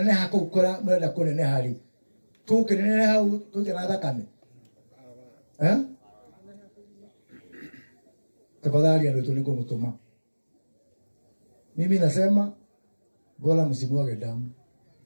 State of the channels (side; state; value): both; inverted; correlation -1.00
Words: kũu kũra mũrenda kũneneha rĩ tũkĩneneha hau tũita na thakame tafadhali ndio niko mtuma mimi nasema bora msimwage damu